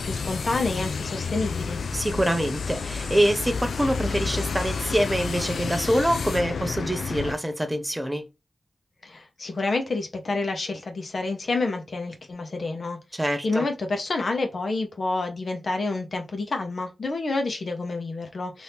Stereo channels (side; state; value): both; normal; correlation 0.93